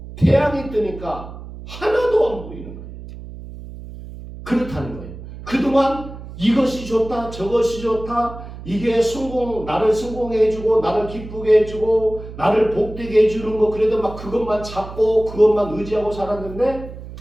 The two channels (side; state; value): right; noise; hum, 13 dB below the sound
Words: 태양이 뜨니까 하나도 안 보이는 거예요. 그렇다는 거예요. 그동안 이것이 좋다, 저것이 좋다, 이게 나를 성공해주고, 나를 기쁘게 해주고, 나를 복되게 해주는 거, 그래도 막 그것만 잡고, 그것만 의지하고 살았는데,